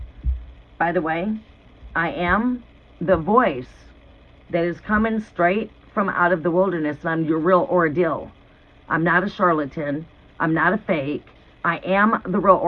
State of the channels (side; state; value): both; identical; correlation 1.00